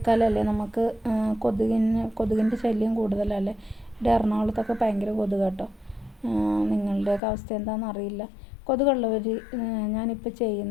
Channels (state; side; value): drops out; right; at 7.2 s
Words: നമുക്ക് കൊതുകിൻ്റെ ശല്യം കൂടുതലല്ലേ. ഇവിടെ എറണാകുളത്തൊക്കെ ഭയങ്കര കൊതുക് കേട്ടോ. നിങ്ങളുടെയൊക്കെ അവസ്ഥ എന്താണെന്ന് അറിയില്ല. കൊതുകുള്ളവർ ഞാനിപ്പോൾ